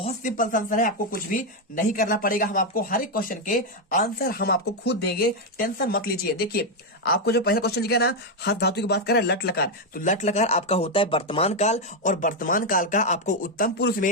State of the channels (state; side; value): normal; both; correlation 0.03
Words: सिंपल सा आंसर है, आपको कुछ भी नहीं करना पड़ेगा। हम आपको हर एक क्वेश्चन के आंसर हम आपको खुद देंगे, टेंशन मत लीजिए। देखिए आपको जो पहला क्वेश्चन लिखा है ना हस धातु की बात करें लट लकार, तो लट लकार आपका होता है वर्तमान काल, और वर्तमान काल का आपको उत्तम पुरुष